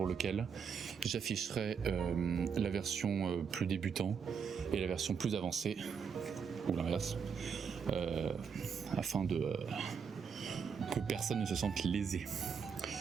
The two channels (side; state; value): left; quieter; 6.5 dB